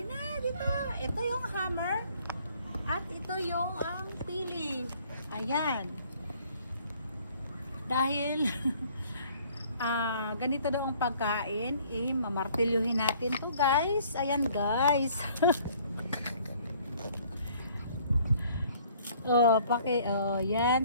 dito. Ito yung hammer. At ito yung ang pili. Ayan. Dahil ganito daw ang pagkain, mamartilyuhin natin to guys. Ayan guys.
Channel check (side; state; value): both; inverted; correlation -0.58